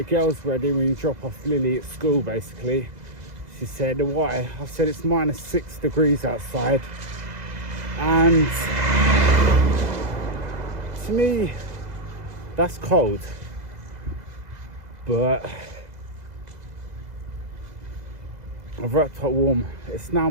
girls ready when you drop off Lily at school, basically. She said, why? I said, it's -6 degrees outside, and to me that's cold, but I've wrapped up warm. It's now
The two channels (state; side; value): late; left; 2.0 ms